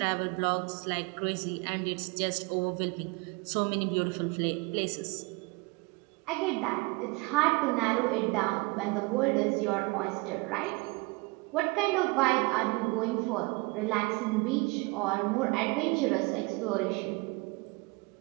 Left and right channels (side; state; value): left; quieter; 26.7 dB